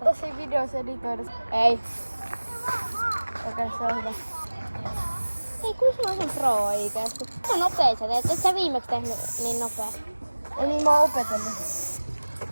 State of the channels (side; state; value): both; inverted; correlation -1.00